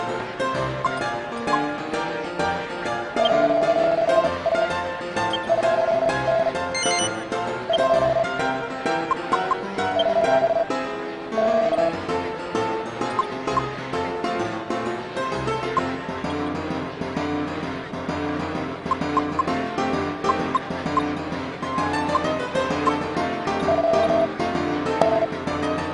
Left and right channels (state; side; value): identical; both; correlation 1.00